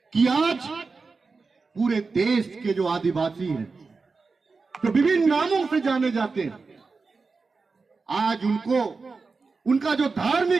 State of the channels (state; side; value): quieter; left; 4.3 dB